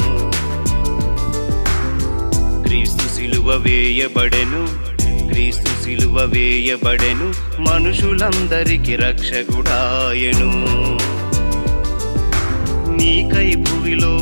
క్రీస్తు సిలువ వేయబడెను, క్రీస్తు సిలువ వేయబడెను, మనుషులందరికి రక్షకుడాయెను. నీకై భువిలో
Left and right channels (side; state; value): both; inverted; correlation -1.00